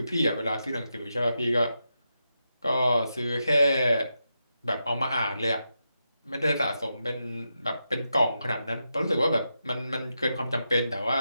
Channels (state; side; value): inverted; both; correlation -0.87